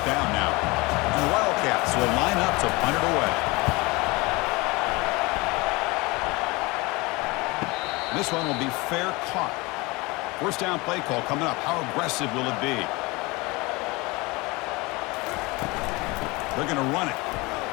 down now. And the Wildcats will line up to punt it away. This one will be fair caught. First down play call coming up. How aggressive will it be? They're going to run it.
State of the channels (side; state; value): right; quieter; 24.1 dB